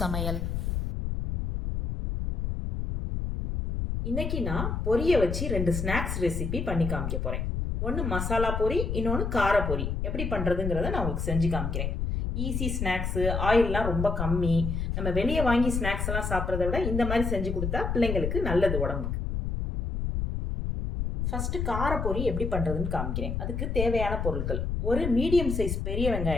இன்னைக்கு நான் பொரியை வச்சு 2 ஸ்நாக்ஸ் ரெசிபி பண்ணி காமிக்க போகிறேன். ஒன்று மசாலா பொரி, இன்னொன்று கார பொரி. எப்படி பண்ணுறதுங்கிறத நான் உங்களுக்கு செஞ்சு காமிக்கிறேன். ஈஸி ஸ்நாக்ஸு, ஆயிலெலாம் ரொம்ப கம்மி. நம்ம வெளியே வாங்கி ஸ்நாக்ஸ் எல்லாம் சாப்பிட்றத விட இந்த மாதிரி செஞ்சு கொடுத்தா பிள்ளைங்களுக்கு நல்லது உடம்புக்கு. ஃபஸ்ட்டு கார பொரி எப்படி பண்ணுறதுன்னு காமிக்கிறேன். அதுக்கு தேவையான பொருட்கள்: ஒரு மீடியம் சைஸ் பெரிய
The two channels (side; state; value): left; noise; rumble, 2 dB below the sound